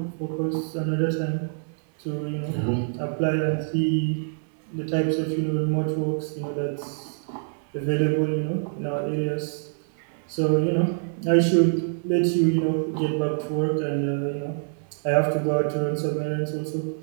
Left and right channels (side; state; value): left; silent; digital silence